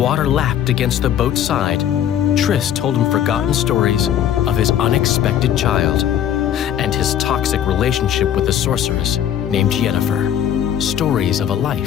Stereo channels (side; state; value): right; quieter; 10.1 dB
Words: lapped against the boat's side, Triss told him forgotten stories of his unexpected child and his toxic relationship with a sorceress named Yennefer. Stories of a